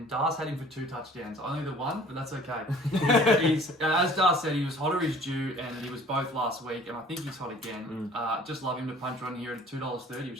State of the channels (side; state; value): both; normal; correlation 0.51